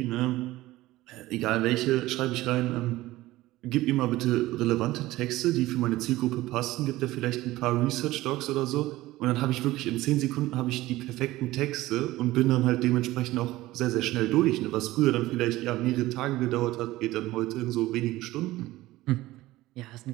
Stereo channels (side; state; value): left; quieter; 17.4 dB